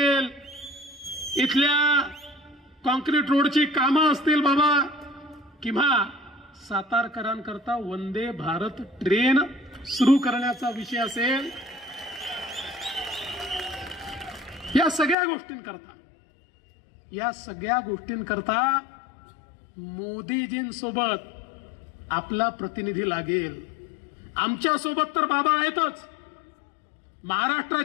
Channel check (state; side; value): drops out; right; at 15.2 s